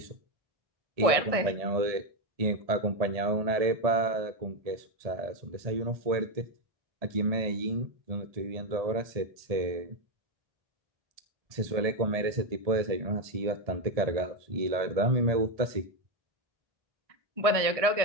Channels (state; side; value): late; left; 1.7 ms